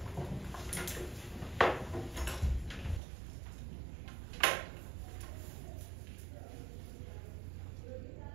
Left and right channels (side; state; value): left; drops out; at 3.0 s